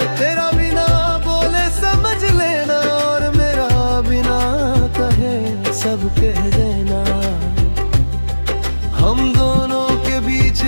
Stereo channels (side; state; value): both; inverted; correlation -1.00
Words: तेरा बिना बोले समझ लेना, और मेरा बिना कहे सब कह देना। हम दोनों के बीच